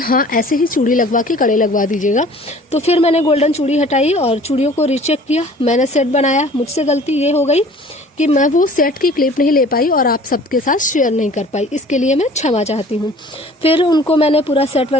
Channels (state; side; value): normal; both; correlation 0.49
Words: ऐसे ही चूड़ी लगवा के कड़े लगवा दीजिएगा। तो फिर मैंने गोल्डन चूड़ी हटाई और चूड़ियों को रीचेक किया, मैंने सेट बनाया। मुझसे गलती ये हो गई कि मैं वो सेट की क्लिप नहीं ले पाई और आप सबके साथ शेयर नहीं कर पाई, इसके लिए मैं क्षमा चाहती हूँ। फिर उनको मैंने पूरा सेट